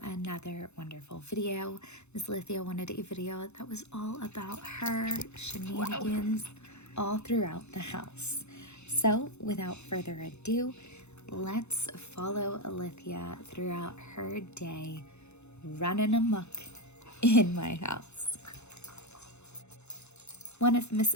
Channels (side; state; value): right; late; 0.81 ms